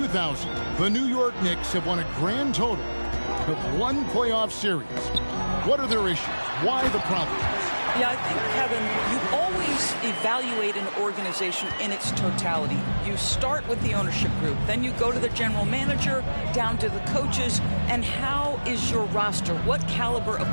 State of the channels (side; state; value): both; inverted; correlation -1.00